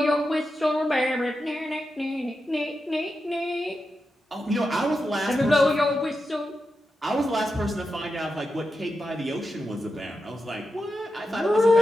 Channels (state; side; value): normal; both; correlation 0.89